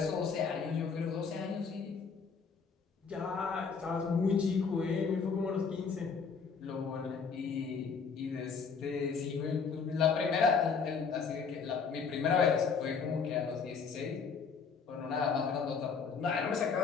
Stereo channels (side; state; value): right; quieter; 5.6 dB